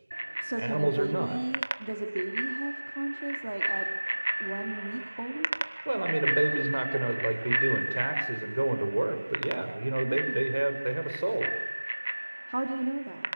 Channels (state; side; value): inverted; both; correlation -1.00